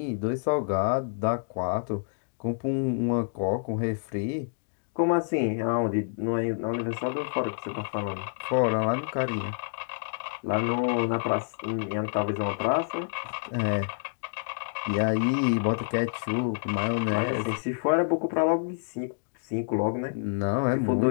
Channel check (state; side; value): silent; right; digital silence